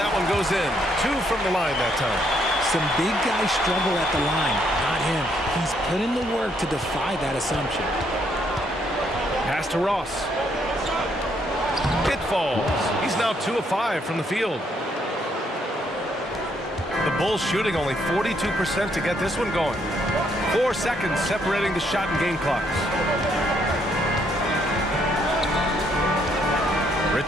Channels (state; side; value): normal; both; correlation 0.72